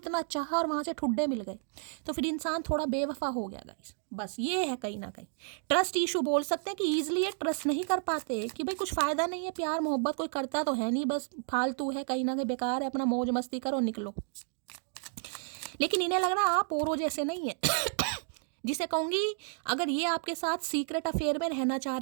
चाहा और वहाँ से ठुड्डे मिल गए, तो फिर इंसान थोड़ा बेवफा हो गया गाइस। बस ये है कहीं ना कहीं ट्रस्ट इशू बोल सकते हैं कि ईजिली ये ट्रस्ट नहीं कर पाते कि भाई कुछ फ़ायदा नहीं है, प्यार मोहब्बत कोई करता तो है नहीं, बस फालतू है, कहीं ना कहीं बेकार है, अपना मौज मस्ती करो, निकलो। लेकिन इन्हें लग रहा आप औरों जैसे नहीं है। जिसे कहूँगी अगर ये आपके साथ सीक्रेट अफेयर में रहना चाह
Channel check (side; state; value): left; silent; 57 dB below the other